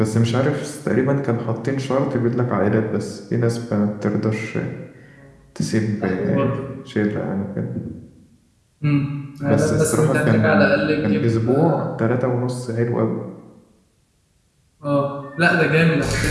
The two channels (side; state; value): both; identical; correlation 1.00